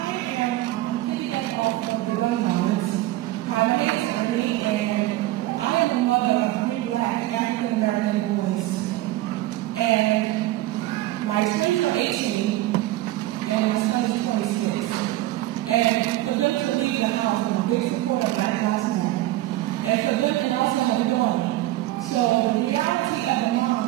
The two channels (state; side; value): quieter; left; 16.4 dB